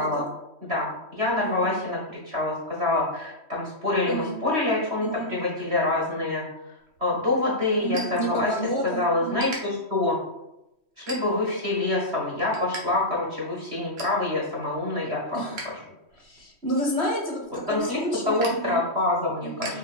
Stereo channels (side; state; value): left; late; 3.1 ms